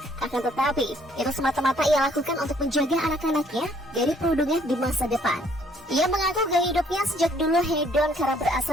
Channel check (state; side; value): normal; both; correlation 0.64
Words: Akan tetapi, itu semata-mata ia lakukan untuk menjaga anak-anaknya dari perundungan di masa depan. Ia mengaku gaya hidupnya sejak dulu hedon karena